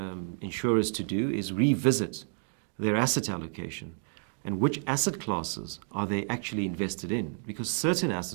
insurers to do is revisit their asset allocation and which asset classes are they actually invested in, because certain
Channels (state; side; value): silent; left; 58 dB below the other